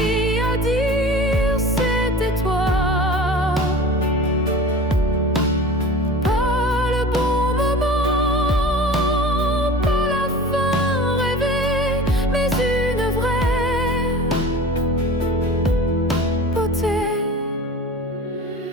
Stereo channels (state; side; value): normal; both; correlation 0.38